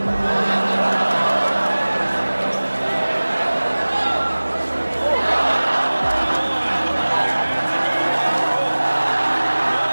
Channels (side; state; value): both; inverted; correlation -1.00